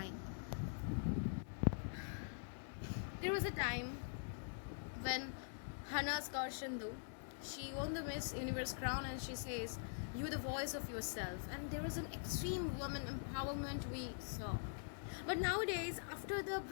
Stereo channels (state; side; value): silent; right; digital silence